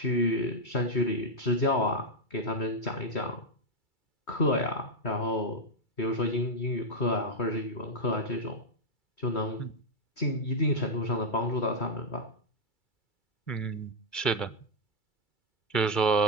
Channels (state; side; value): late; right; 2.3 ms